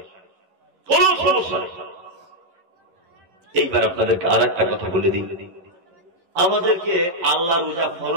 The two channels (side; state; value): left; late; 11 ms